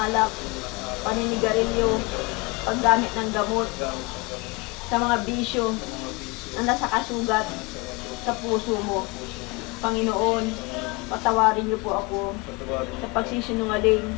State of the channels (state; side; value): quieter; right; 27.2 dB